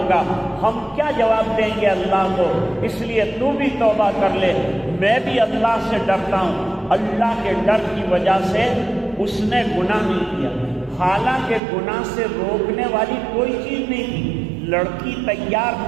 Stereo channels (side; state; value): left; drops out; at 11.6 s